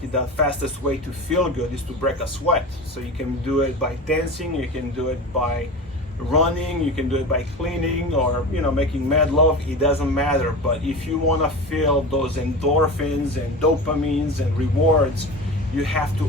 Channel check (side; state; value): both; normal; correlation 0.30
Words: the fastest way to feel good is to break a sweat. So you can do it by dancing, you can do it by running, you can do it by cleaning, or making mad love. It doesn't matter. But if you want to feel those endorphins and dopamines and rewards, you have